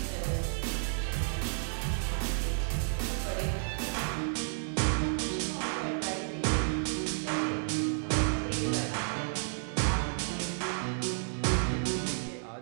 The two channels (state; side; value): silent; left; digital silence